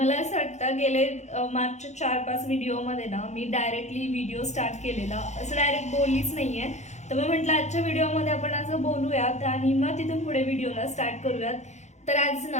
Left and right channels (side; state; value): right; late; 0.33 ms